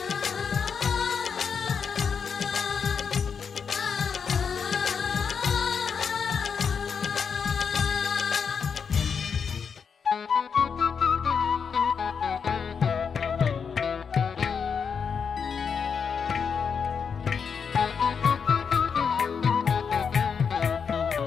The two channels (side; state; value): right; quieter; 6.3 dB